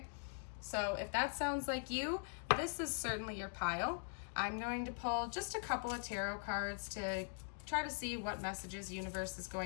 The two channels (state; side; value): silent; right; digital silence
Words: So if that sounds like you, this is certainly your pile. I'm going to pull just a couple of tarot cards to try to see what messages the universe is